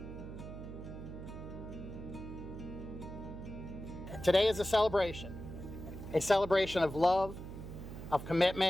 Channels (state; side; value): noise; right; hum, 10 dB below the sound